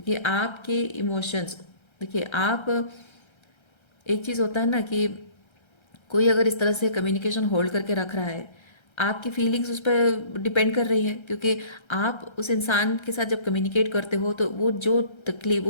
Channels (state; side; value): late; right; 1.3 ms